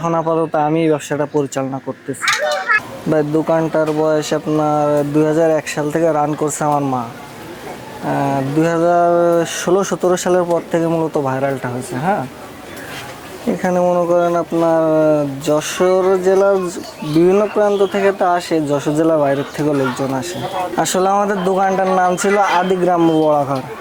আপাতত আমি ব্যবসাটা পরিচালনা করতেছি। ভাই দোকানটার বয়স আপনার 2001 সাল থেকে রান করছে আমার মা। 2016-17 সালের পর থেকে মূলত ভাইরালটা হয়েছে। হ্যাঁ, এখানে মনে করেন আপনার যশোর জেলার বিভিন্ন প্রান্ত থেকে তো আসে, যশোর জেলার বাইরের থেকেও লোকজন আসে। আসলে আমাদের দোকানটার নাম ছিল আদি গ্রাম্য বড়াঘর।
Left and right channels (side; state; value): both; identical; correlation 1.00